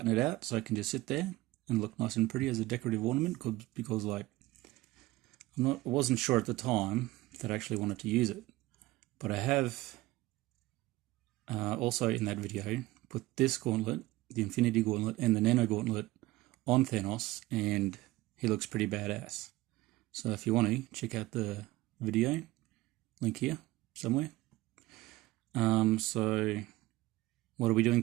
it out so it can just sit there and look nice and pretty as a decorative ornament, because like I wasn't sure at the time that I actually wanted to use it, but I have also in that video put this gauntlet, the Infinity Gauntlet, and the Nano Gauntlet on Thanos, and he looks pretty badass. So if you want to check out the video, link here somewhere. So what are we doing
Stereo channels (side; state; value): left; quieter; 18.5 dB